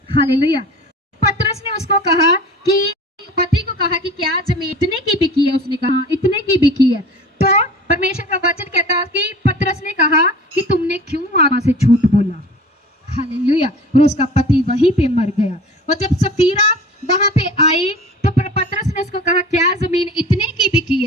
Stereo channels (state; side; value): normal; both; correlation 0.40